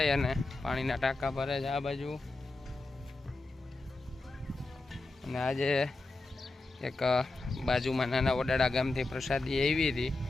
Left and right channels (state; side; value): quieter; right; 3.1 dB